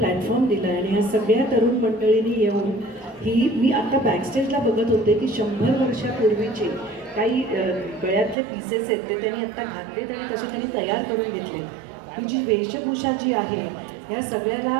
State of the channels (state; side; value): drops out; left; at 8.3 s